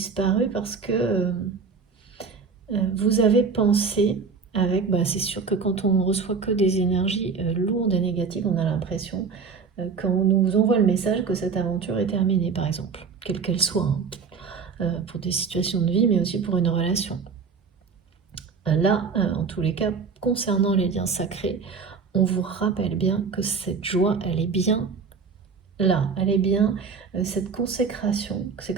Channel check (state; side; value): quieter; left; 5.4 dB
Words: parce que vous avez pensé avec, c'est sûr que quand on ne reçoit que des énergies lourdes et négatives, on a l'impression, quand on nous envoie le message que cette aventure est terminée, par exemple, quelle qu'elle soit, hein, pour des situations de vie, mais aussi pour une relation. Là, en tous les cas, concernant les liens sacrés, on vous rappelle bien que cette joie, elle est bien là, elle est bien cette consécration, c'est